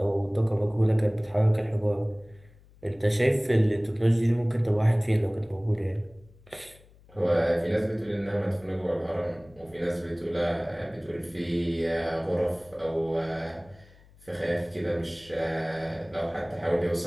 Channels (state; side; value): noise; left; hum, 26 dB below the sound